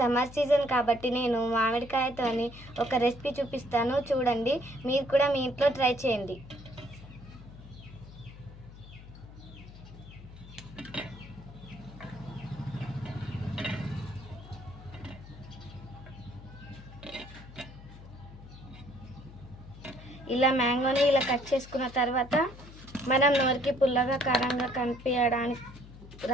సీజన్ కాబట్టి నేను మామిడికాయతోని ఒక రెసిపీ చూపిస్తాను, చూడండి. మీరు కూడా మీ ఇంట్లో ట్రై చేయండి. ఇలా మ్యాంగోని ఇలా కట్ చేసుకున్న తర్వాత మనం నోరికి పుల్లగా కారంగా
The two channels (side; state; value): left; noise; hum, 17 dB below the sound